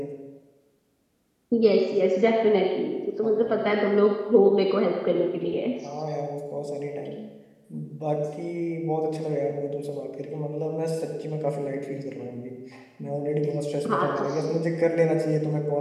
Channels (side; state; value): both; identical; correlation 1.00